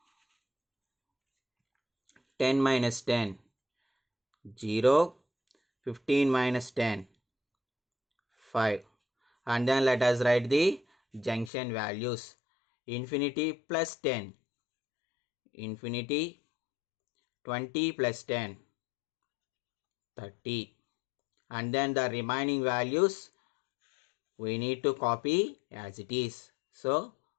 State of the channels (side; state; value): right; drops out; at 11.5 s